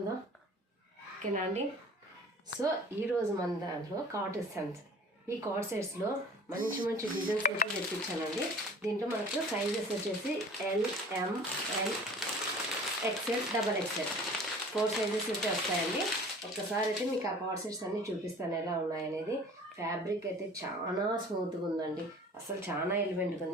ఓకేనా అండి. సో ఈరోజు మన దాంట్లో కార్డ్ సెట్స్, ఈ కార్డ్ సెట్స్లో మంచి మంచి డిజైన్స్ అయితే తెప్పించానండి. దీంట్లో మనకు సైజెస్ వచ్చేసి L, M, L, XL, double XL 4 sizes అయితే వస్తాయండి. ఒక్కసారి అయితే మీకు ఆ కార్డ్ సెట్స్ అన్నీ చూపిస్తాను ఎలా ఉన్నాయనేది. ఫ్యాబ్రిక్ అయితే చాలా స్మూత్గా ఉందండి, అసలు చాలా ఎలిమెంట్గా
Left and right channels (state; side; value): normal; both; correlation 0.45